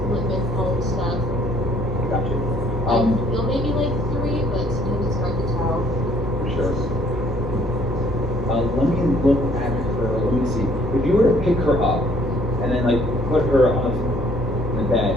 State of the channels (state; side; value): normal; both; correlation 0.62